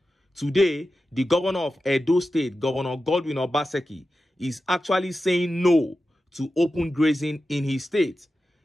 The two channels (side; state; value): both; normal; correlation 0.92